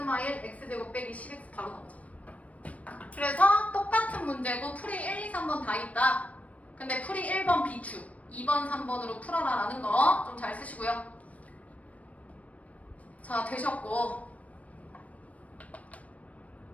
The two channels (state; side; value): late; right; 0.067 ms